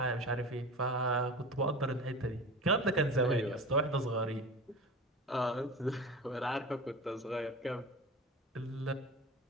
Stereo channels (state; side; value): normal; both; correlation 0.32